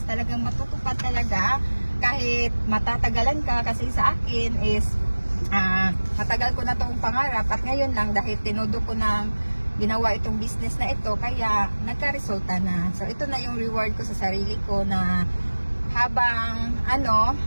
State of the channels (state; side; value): inverted; both; correlation -1.00